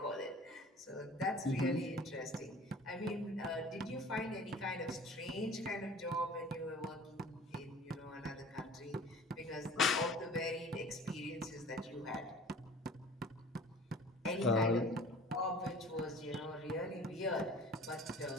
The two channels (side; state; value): both; normal; correlation 0.45